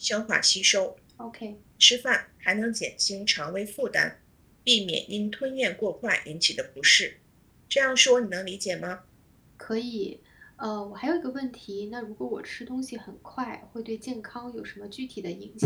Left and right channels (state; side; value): identical; both; correlation 1.00